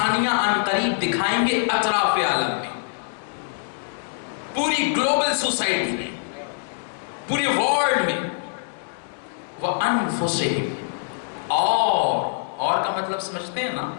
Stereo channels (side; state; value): right; silent; digital silence